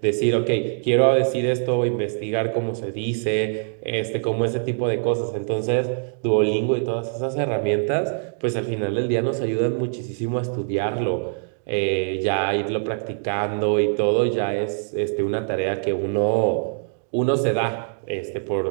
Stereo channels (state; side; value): silent; left; digital silence